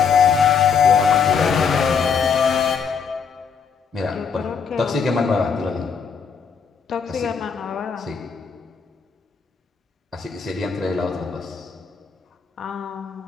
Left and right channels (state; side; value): quieter; right; 6.3 dB